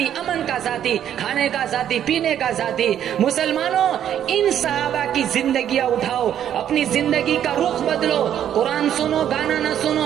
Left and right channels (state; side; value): quieter; left; 10.1 dB